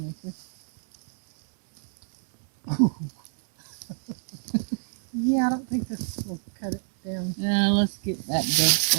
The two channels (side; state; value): left; silent; digital silence